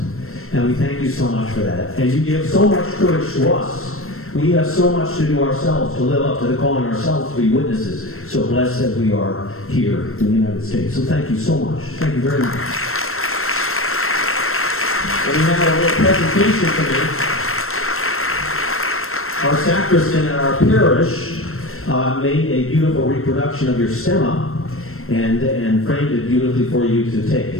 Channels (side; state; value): right; late; 0.62 ms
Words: And we thank you so much for that. And you give so much courage to us. We have so much to do ourselves, to live up to the calling ourselves to be witnesses. So blessed as we are here in the United States. So thank you so much. Thank you very much. And we have a little presentation today. Our sacristan at our parish made a beautiful reproduction of your stemma and framed it beautifully for you to take